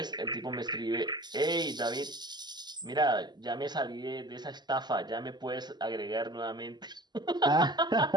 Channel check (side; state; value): left; late; 0.21 ms